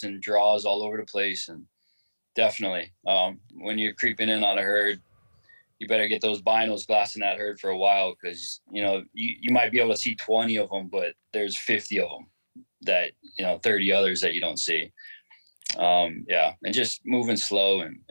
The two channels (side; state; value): both; inverted; correlation -1.00